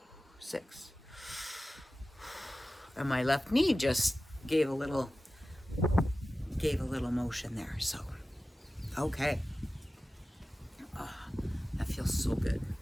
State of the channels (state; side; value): normal; both; correlation 0.95